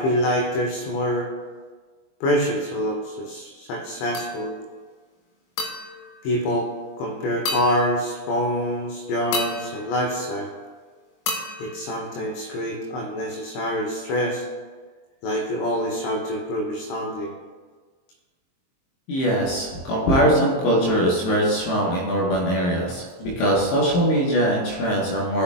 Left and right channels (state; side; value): late; right; 23 ms